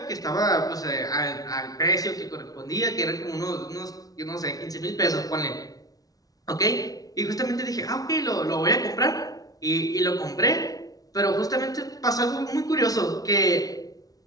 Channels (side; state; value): right; late; 0.18 ms